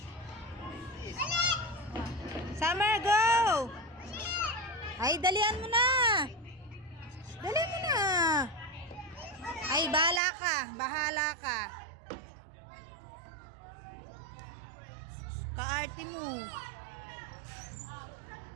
Summer, go! Ay, dalian mo na. Dalian mo na. Ay, bahala ka. Bahala ka. Kaarte mo.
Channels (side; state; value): left; drops out; at 10.2 s